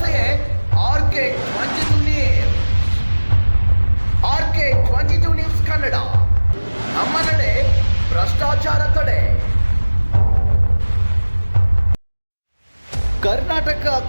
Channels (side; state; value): both; inverted; correlation -1.00